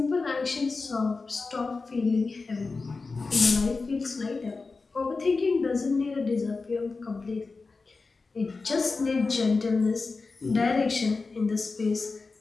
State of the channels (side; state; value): right; quieter; 4.0 dB